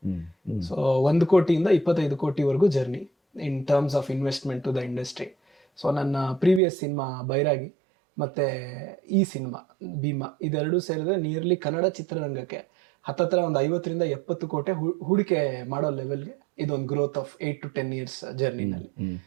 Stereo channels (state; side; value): drops out; left; at 6.6 s